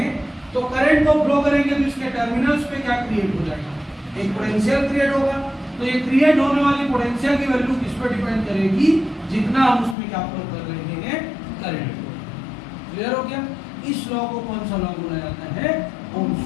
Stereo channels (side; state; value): right; drops out; at 10.0 s